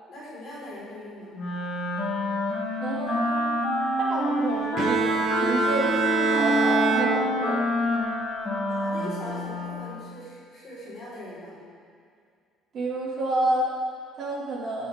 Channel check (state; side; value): normal; both; correlation 0.64